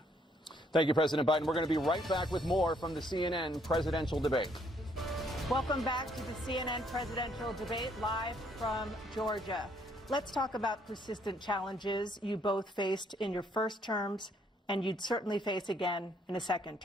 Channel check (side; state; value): both; normal; correlation 0.68